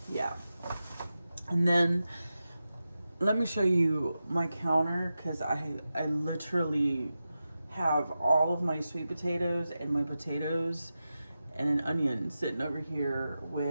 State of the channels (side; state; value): both; inverted; correlation -0.92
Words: yeah. And then let me show you my counter, because I literally have all of my sweet potatoes and my potatoes and an onion sitting over here